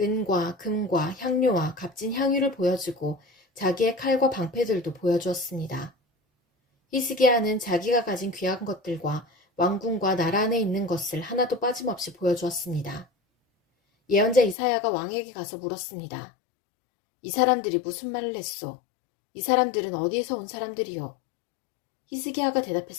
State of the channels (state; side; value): drops out; right; at 14.6 s